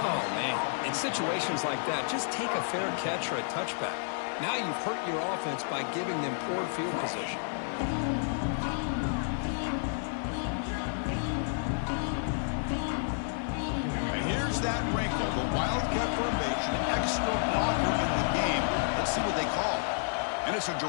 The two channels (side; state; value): right; silent; 55 dB below the other